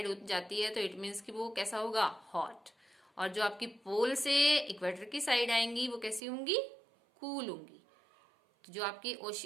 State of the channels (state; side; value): drops out; left; at 6.2 s